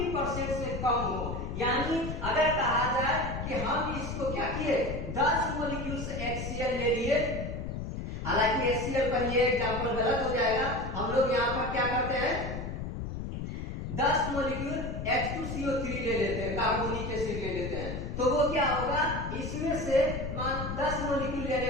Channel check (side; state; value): left; noise; rumble, 5 dB below the sound